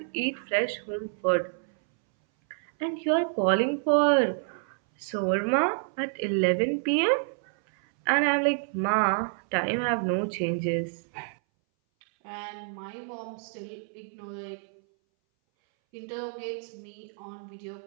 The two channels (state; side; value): silent; left; 59 dB below the other